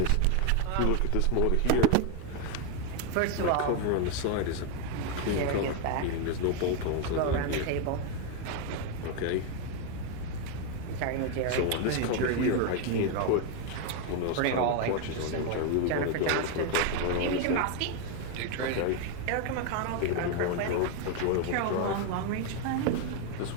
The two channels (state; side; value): different; both; correlation 0.01